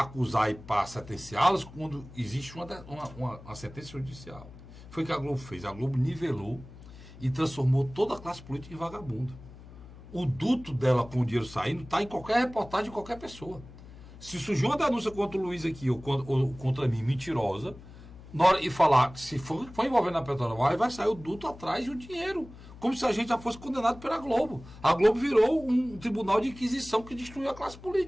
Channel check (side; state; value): left; noise; hum, 18 dB below the sound